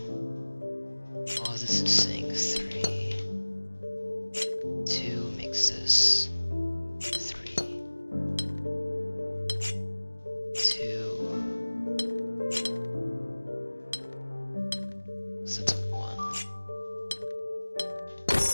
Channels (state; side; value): inverted; both; correlation -1.00